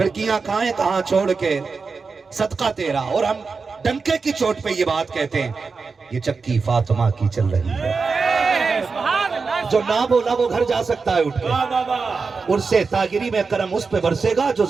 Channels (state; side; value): quieter; left; 4.7 dB